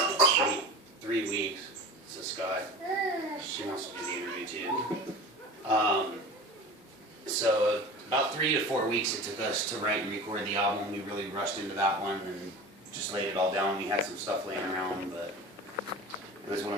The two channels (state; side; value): normal; both; correlation 0.35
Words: three weeks. So Scott, she wants to do the interview too. So about 3 to 4 weeks it took us to write and record the album. We really rushed into that one and just laid it all down. We had some stuff laying around, but it was one of